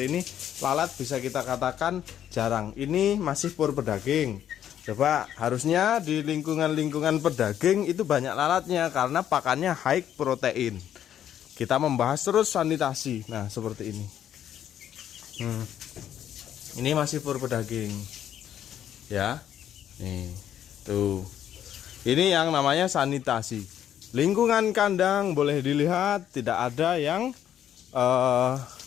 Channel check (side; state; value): right; quieter; 10.3 dB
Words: ini, lalat bisa kita katakan jarang. Ini masih pur pedaging. Coba, harusnya di lingkungan-lingkungan pedaging itu banyak lalatnya karena pakannya high protein. Kita membahas terus sanitasi. Nah, seperti ini. Ini masih fur pedaging. Ya. Nih, tuh. Ini yang namanya sanitasi. Lingkungan kandang boleh dilihat tidak ada yang